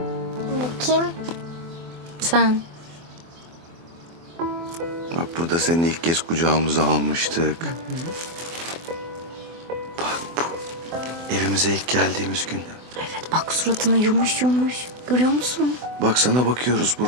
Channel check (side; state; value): left; late; 24 ms